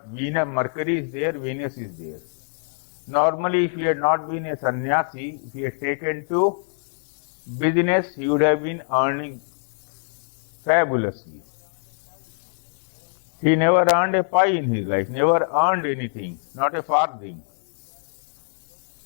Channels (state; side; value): silent; right; digital silence